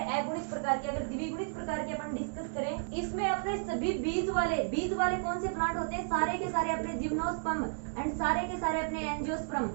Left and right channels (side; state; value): left; silent; digital silence